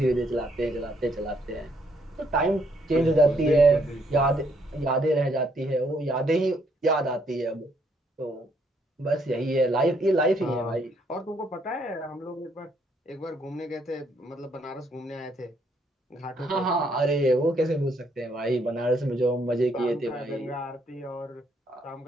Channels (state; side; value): normal; both; correlation 0.70